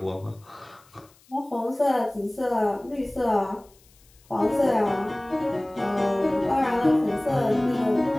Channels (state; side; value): noise; left; hiss, 30 dB below the sound